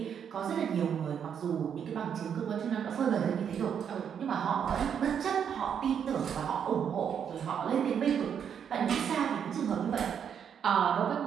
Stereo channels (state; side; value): quieter; left; 8.0 dB